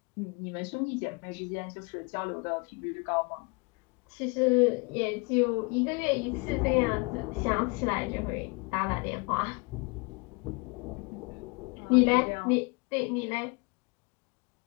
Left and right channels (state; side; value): quieter; right; 30.1 dB